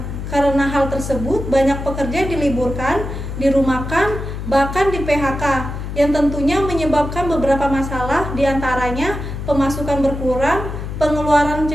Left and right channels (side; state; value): left; noise; hum, 6 dB below the sound